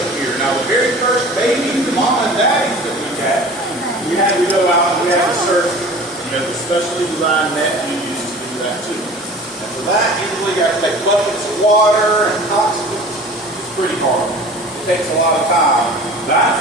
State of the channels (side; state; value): both; normal; correlation 0.42